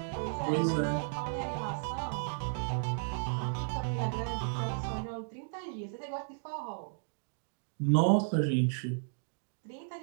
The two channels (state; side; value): silent; left; digital silence